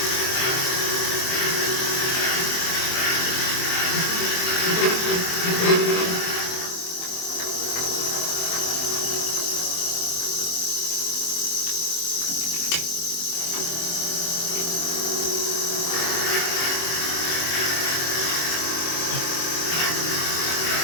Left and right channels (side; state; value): right; late; 23 ms